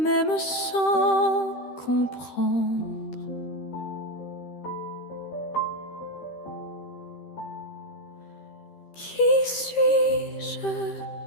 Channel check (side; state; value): right; late; 13 ms